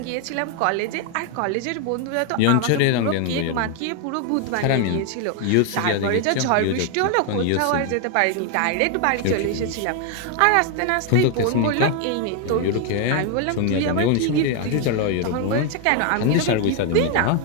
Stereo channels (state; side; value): different; both; correlation 0.01